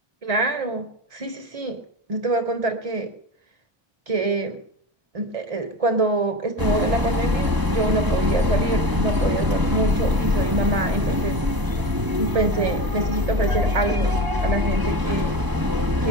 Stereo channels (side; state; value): left; late; 1.0 ms